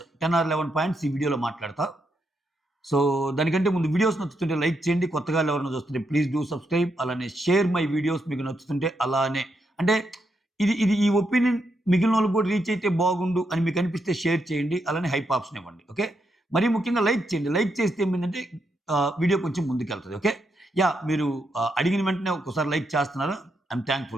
10 ఆర్ 11 పాయింట్స్ ఈ వీడియోలో మాట్లాడతా. సో, దానికంటే ముందు వీడియోస్ నచ్చుతుంటే లైక్ చేయండి. కొత్తగా ఎవరైనా చూస్తుంటే ప్లీజ్ డూ సబ్స్క్రైబ్. అలానే షేర్ మై వీడియోస్ మీకు నచ్చుతుంటే అలానే. అంటే ఇది ఇది ఈ ఒపీనియన్ మిగిలినోళ్ళకి కూడా రీచ్ అయితే బాగుండు అని మీకు అనిపిస్తే షేర్ చేయండి. అలానే హైప్ ఆప్షన్ ఇవ్వండి. ఓకే. మరీ ముఖ్యంగా లైక్ చేయండి. లైక్ చేస్తే ఏమైందంటే వీడియో కొంచెం ముందుకెళ్తది. ఓకే. మీరు అడిగిన వెంటనే ఒక్కసారి లైక్ చేస్తున్నారు. I'm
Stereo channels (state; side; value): normal; both; correlation 0.81